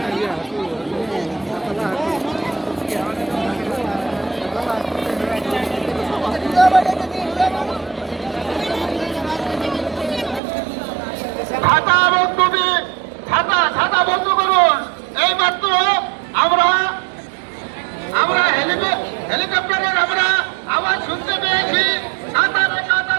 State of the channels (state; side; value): drops out; left; at 10.4 s